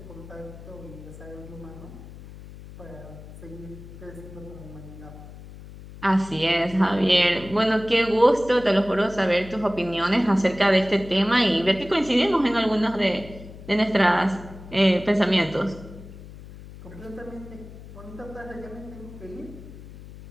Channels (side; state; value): left; noise; hum, 16 dB below the sound